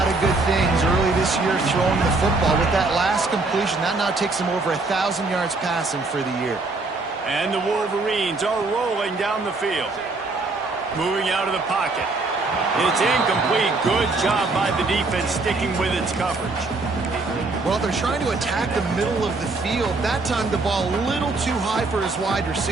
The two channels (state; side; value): quieter; left; 3.5 dB